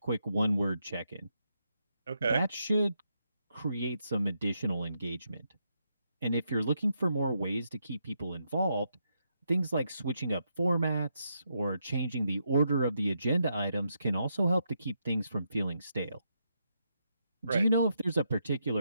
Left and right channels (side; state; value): both; inverted; correlation -0.80